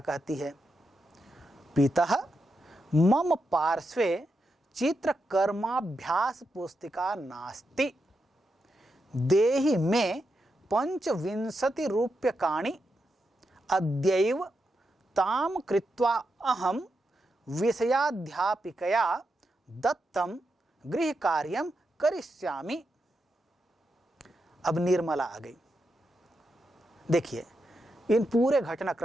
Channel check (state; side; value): normal; both; correlation 0.85